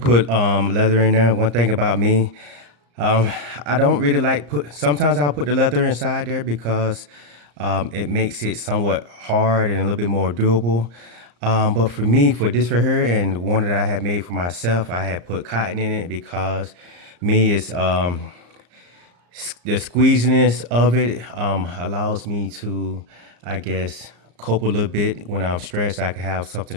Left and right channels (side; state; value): left; late; 34 ms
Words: leather in there. One thing about me, um, I don't really like put. Sometimes I'll put the leather inside there because it makes it somewhat hard and a little bit more durable. But for me, for this right here and one that I had made for myself, I had put cotton in it because me is the squeeziness of it allows me to, I guess, cope a little bit when I'm stressed. I can have